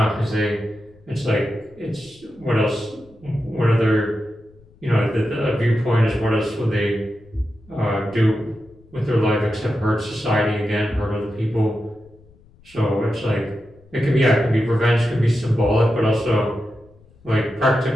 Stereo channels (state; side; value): noise; left; rumble, 28 dB below the sound